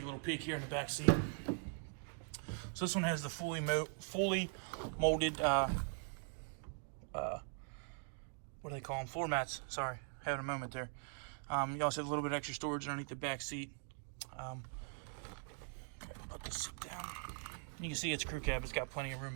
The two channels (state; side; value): silent; left; 50 dB below the other